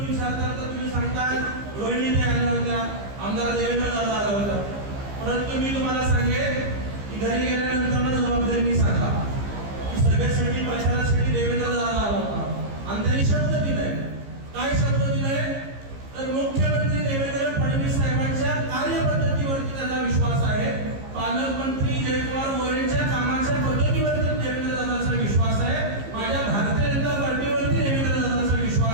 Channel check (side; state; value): left; late; 15 ms